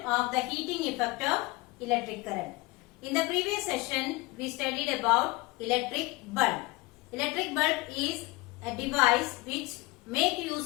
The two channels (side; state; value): right; quieter; 23.1 dB